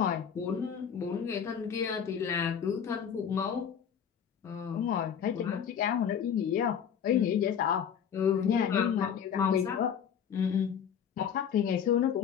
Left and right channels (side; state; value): right; quieter; 8.0 dB